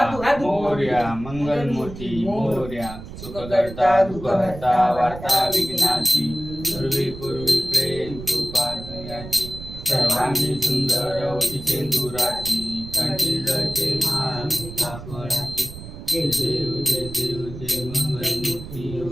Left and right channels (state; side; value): noise; right; rumble, 12 dB below the sound